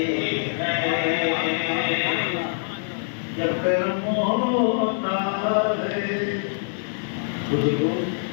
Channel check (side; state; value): right; silent; digital silence